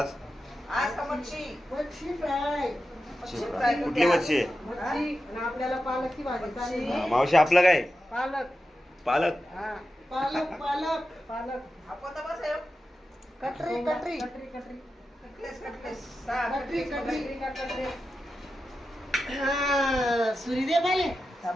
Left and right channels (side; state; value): both; normal; correlation 0.91